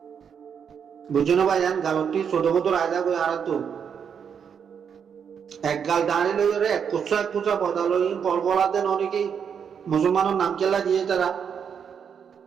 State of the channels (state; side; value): quieter; left; 7.3 dB